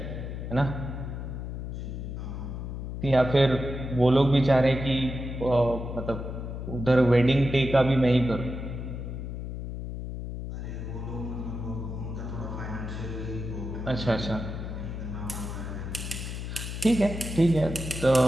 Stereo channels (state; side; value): noise; left; hum, 6 dB below the sound